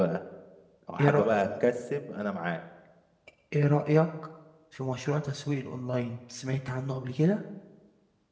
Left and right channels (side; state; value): both; identical; correlation 1.00